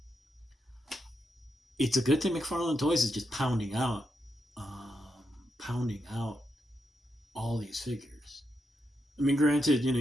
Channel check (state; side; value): normal; both; correlation 0.84